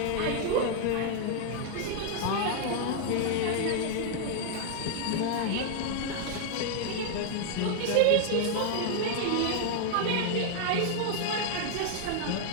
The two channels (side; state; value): both; different; correlation 0.00